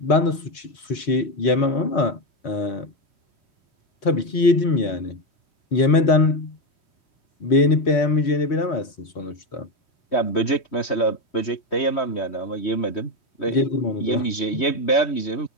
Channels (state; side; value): late; right; 3.1 ms